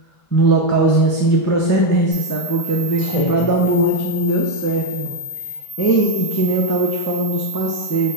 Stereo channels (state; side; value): late; right; 1.5 ms